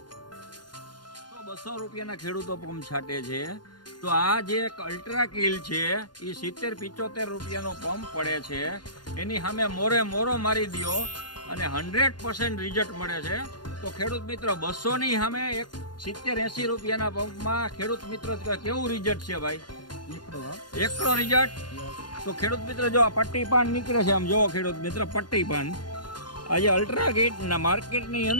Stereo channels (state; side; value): late; right; 0.71 ms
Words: તો 200 રૂપિયાના ખેડૂતો પંપ છાંટે છે, તો આ જે એક અલ્ટ્રા કિલ છે એ 70-75 રૂપિયાનો પંપ પડે છે, એની સામે મોરે મોરો મારી દ્યો અને 100% રિઝલ્ટ મળે છે. તો ખેડૂત મિત્ર 200 ની સામે એક 70-80 રૂપિયાના પંપમાં ખેડૂત મિત્ર કેવું રિઝલ્ટ છે ભાઈ? એકડો રિઝલ્ટ. તો ખેડૂત મિત્ર જો આ પટ્ટી પાન નીકળે છે, આમ જોવો ખેડૂત મિત્ર પટ્ટી પાન, આજે અલ્ટ્રા કિટના માર્કેટની